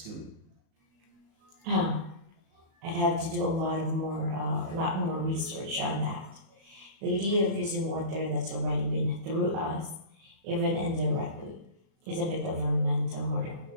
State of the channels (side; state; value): left; late; 37 ms